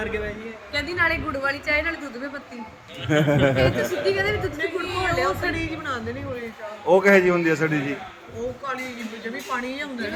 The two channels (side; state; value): both; identical; correlation 1.00